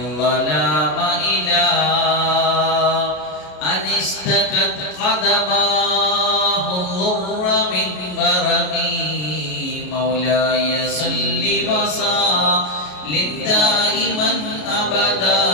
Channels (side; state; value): right; late; 33 ms